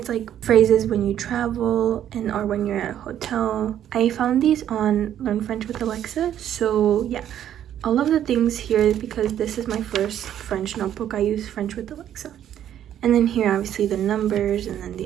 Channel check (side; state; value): left; quieter; 10.6 dB